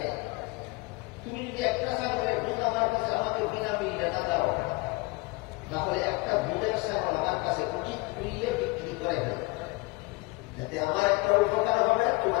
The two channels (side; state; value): right; quieter; 25.4 dB